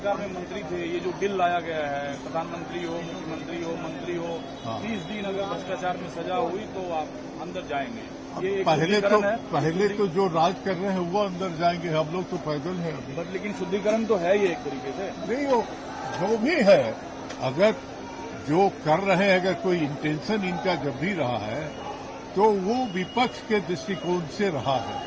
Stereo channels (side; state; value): both; identical; correlation 1.00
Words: में मंत्री थे, ये जो बिल लाया गया है, प्रधानमंत्री हो, मुख्यमंत्री हो, मंत्री हो, हाँ। 30 दिन अगर भ्रष्टाचार में सजा हुई तो आप अंदर जाएंगे। ये एक पहले शुद्धिकरण तो जो राज कर रहे हैं वो अंदर जाएंगे, हम लोग तो पैदल हैं अभी। बट लेकिन शुद्धिकरण तो है ये एक तरीके से। नहीं, वो जो भी है, अगर जो कर रहे हैं, अगर कोई इंटेंशन इनका जब भी रहा है तो वो विपक्ष के दृष्टिकोण से रहा है,